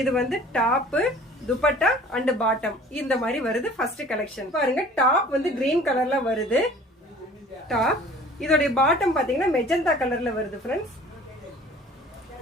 டாப் துப்பட்டா அண்ட் பாட்டம் இந்த மாதிரி வருது. ஃபர்ஸ்ட் கலெக்ஷன் பாருங்க, டாப் கிரீன் கலர்ல வருது. டாப் இதோட பாட்டம் பாத்தீங்கன்னா மெஜந்தா கலர்ல வருது फ्रेंड्स.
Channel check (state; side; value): normal; both; correlation 0.48